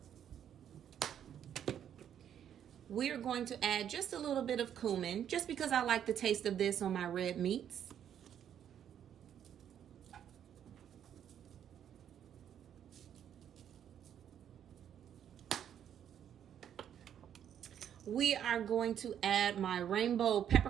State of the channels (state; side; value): quieter; left; 9.5 dB